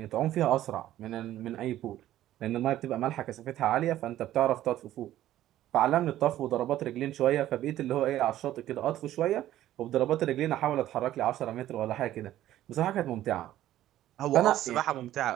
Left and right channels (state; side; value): quieter; left; 13.4 dB